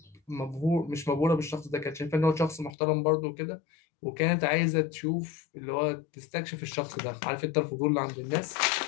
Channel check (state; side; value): drops out; right; at 2.7 s